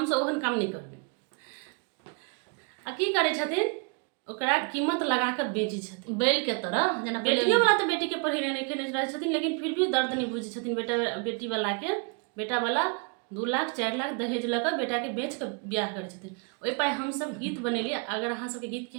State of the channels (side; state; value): left; quieter; 35.1 dB